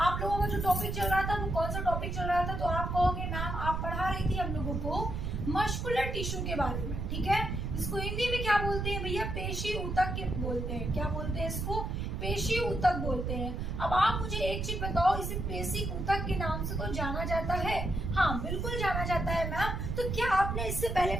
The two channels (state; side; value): noise; right; rumble, 3 dB below the sound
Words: लोगों का जो टॉपिक चल रहा था वो कौन सा टॉपिक चल रहा था, तो आप कहोगे मैम आप पढ़ा रही थी हम लोगों को मस्कुलर टिश्यू के बारे में, ठीक है। इसको हिंदी में क्या बोलते हैं भैया, पेशी ऊतक के बोलते हैं। क्या बोलते हैं इसको, पेशी ऊतक बोलते हैं। अब आप मुझे एक चीज बताओ, इसे पेशी ऊतक के नाम से तो जाना जाता है? हाँ बिल्कुल जाना जाता है मैम। तो क्या आपने इससे पहले